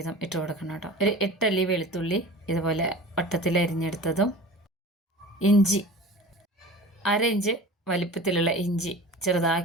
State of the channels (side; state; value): both; normal; correlation 0.37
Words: ഇട്ട് കൊടുക്കണം കേട്ടോ. ഒരു 8 അല്ലി വെളുത്തുള്ളി ഇതുപോലെ വട്ടത്തിൽ അരിഞ്ഞെടുത്തതും, ഇഞ്ചി 1/2 ഇഞ്ച് വലിപ്പത്തിലുള്ള ഇഞ്ചി